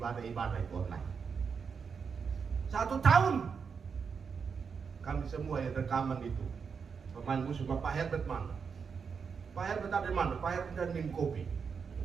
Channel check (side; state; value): left; quieter; 6.0 dB